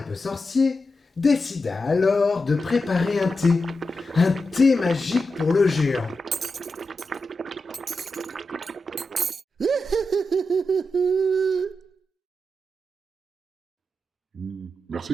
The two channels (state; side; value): normal; both; correlation 0.89